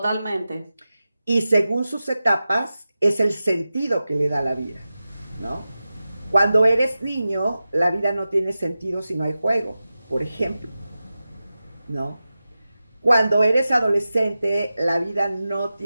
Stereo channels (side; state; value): both; inverted; correlation -0.94